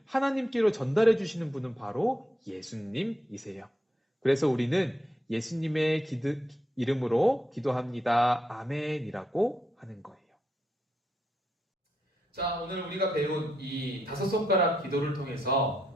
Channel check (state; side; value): normal; both; correlation 0.80